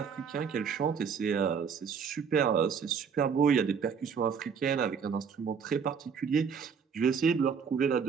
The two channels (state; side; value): quieter; left; 6.4 dB